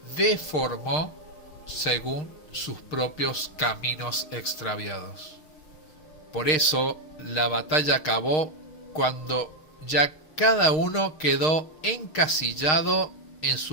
deformó según sus propios caminos extraviados. Por eso la batalla acabó cuando ya cada uno quedó encasillado en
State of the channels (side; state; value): right; late; 6.5 ms